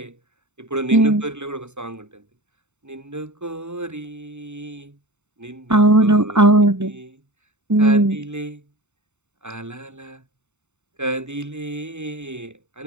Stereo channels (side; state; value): left; late; 0.83 ms